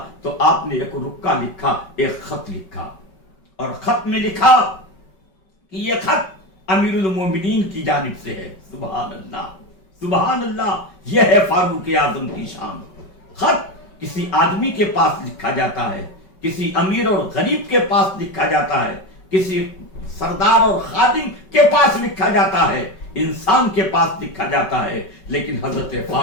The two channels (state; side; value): late; right; 5.3 ms